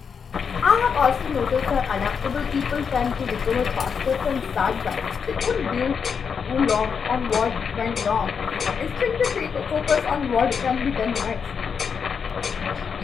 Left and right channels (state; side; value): quieter; right; 6.4 dB